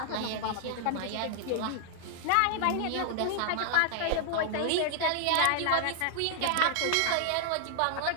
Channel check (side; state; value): both; different; correlation -0.01